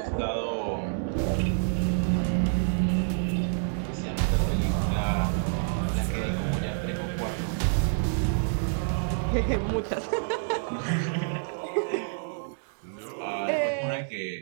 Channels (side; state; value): left; silent; digital silence